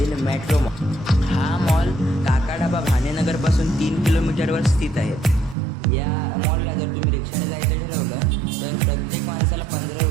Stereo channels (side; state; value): left; drops out; at 5.6 s